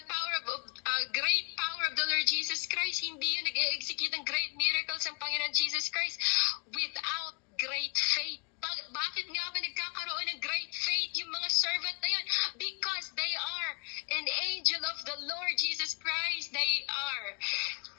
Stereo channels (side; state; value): right; quieter; 35.9 dB